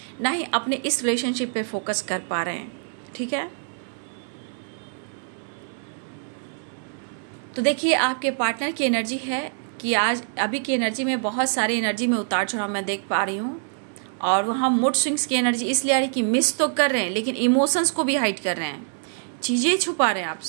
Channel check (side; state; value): left; silent; 62 dB below the other